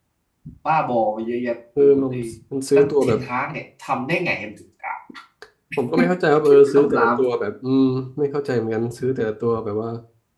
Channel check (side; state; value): both; identical; correlation 1.00